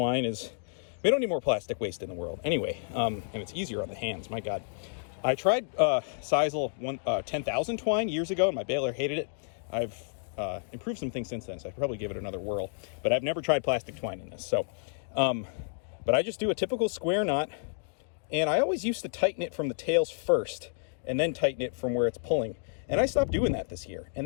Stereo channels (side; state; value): right; silent; digital silence